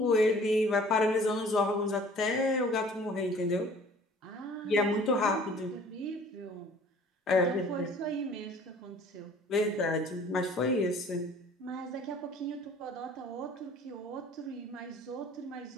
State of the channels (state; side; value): normal; both; correlation 0.51